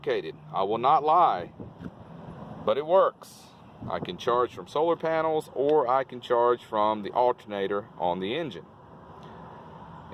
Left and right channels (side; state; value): both; identical; correlation 1.00